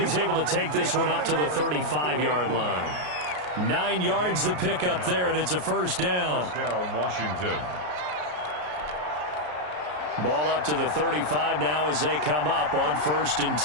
able to take this one up to the 35-yard line. 9 yards to pick up there, and it's a first down. First down, Washington. Ball up to the 35 now as they come up on 1st and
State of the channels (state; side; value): late; left; 33 ms